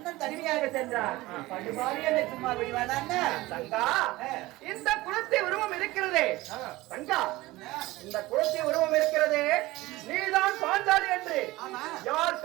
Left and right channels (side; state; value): left; quieter; 19.3 dB